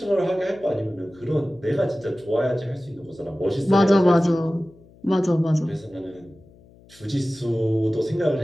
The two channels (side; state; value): left; noise; hum, 26 dB below the sound